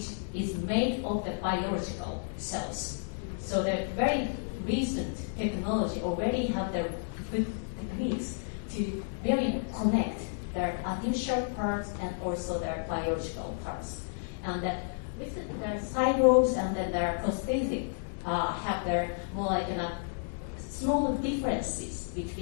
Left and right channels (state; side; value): silent; right; digital silence